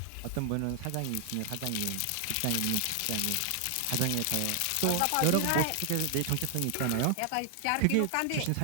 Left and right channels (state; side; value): different; both; correlation 0.00